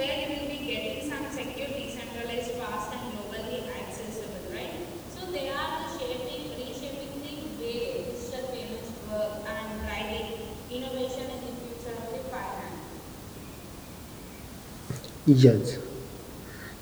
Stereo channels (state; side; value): identical; both; correlation 1.00